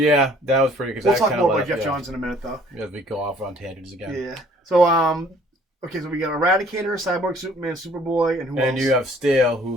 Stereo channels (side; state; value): both; normal; correlation 0.57